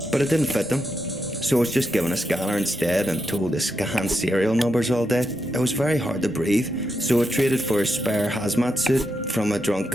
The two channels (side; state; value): both; normal; correlation 0.84